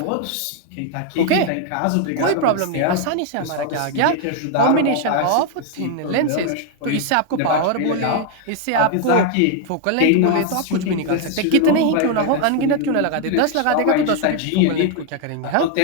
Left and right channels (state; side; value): different; both; correlation 0.01